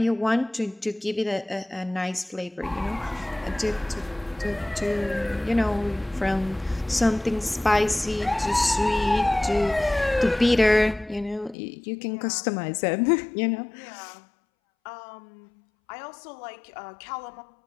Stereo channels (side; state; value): right; drops out; at 11.6 s